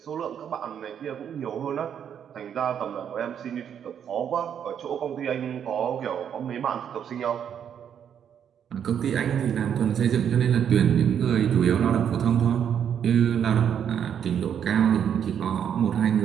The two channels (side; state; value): left; quieter; 8.6 dB